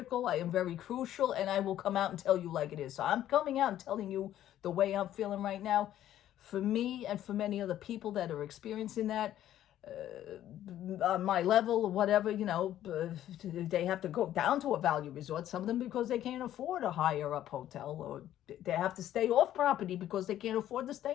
I am very crucial. And I will come out and tell you like it is. So I'm coming out and telling you the way I'm feeling right now. For me and for many other people that are experiencing that, on my level or whatever, you know, they have to go down to a value resort. Some of them because they can't afford a higher up hotel, or they have to stay off property because they can't afford to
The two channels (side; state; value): right; quieter; 12.2 dB